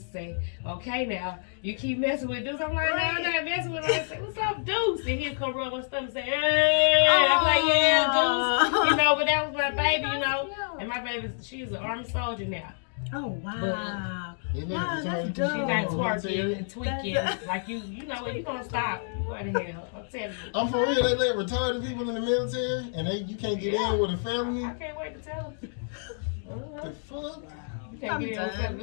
to say, "Okay, now you keep messing with dudes." I'm like, "No, I'm not messing with them." I say, "What's up, Deuce?" And he'll come rub my stomach and say, "Hey." I'm like, "Yeah, Deuce." You know, but that was my baby, you know. And my baby, she's an Army soldier now. Oh wow! But, wow, that's She dope. got twerking and tweaking. Like you know what? You gonna stop? You going to hell? I'm telling you. I'm for real. They let retarded people in the military, and you can't get in with a felony. I can't wait to tell them. The fuck? You can't get in with a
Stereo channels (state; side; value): silent; right; digital silence